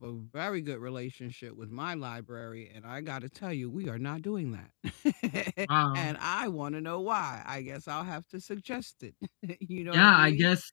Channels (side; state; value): right; silent; digital silence